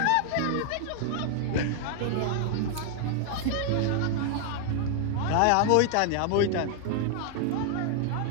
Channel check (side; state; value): both; different; correlation 0.00